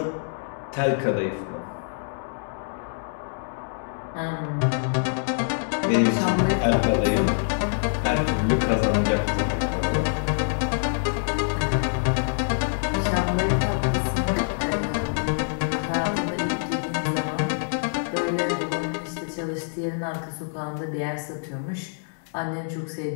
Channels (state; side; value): silent; right; digital silence